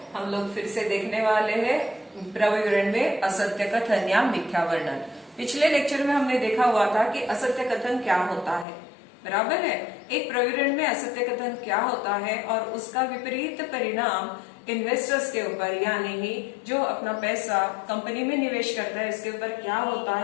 हम लोग फिर से देखने वाले हैं प्रविवरण में असत्य कथन या मिथ्या वर्णन। पिछले लेक्चर में हमने देखा हुआ था कि असत्य कथन क्या होता है, बराबर है। एक प्रविवरण में असत्य कथन क्या होता है और उसका विपरीत परिणाम इन्वेस्टर्स के ऊपर यानी ही जो अपना पैसा कंपनी में निवेश करता है इसके ऊपर क्या होता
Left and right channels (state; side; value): drops out; right; at 8.7 s